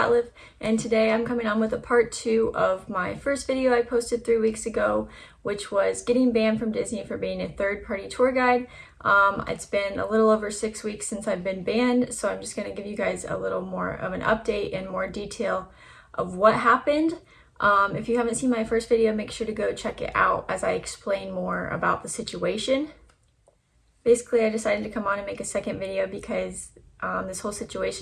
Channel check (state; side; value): identical; both; correlation 1.00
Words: and today I'm coming on with a part 2 of my first video I posted 3 weeks ago, which was getting banned from Disney for being a third-party tour guide. It's been a little over 6 weeks since I've been banned, so I'm just going to give you guys a little more of an update and more detail of what happened. If you haven't seen my first video, make sure to go check it out as I explain more about the situation. Basically, I decided to come on and make a second video because this whole